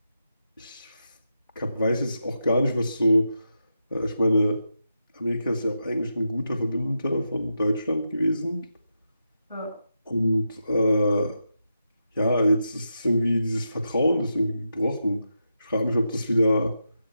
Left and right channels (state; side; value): inverted; both; correlation -0.87